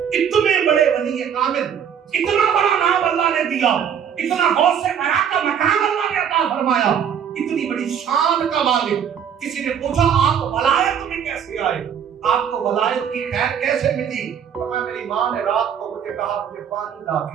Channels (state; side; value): quieter; left; 8.3 dB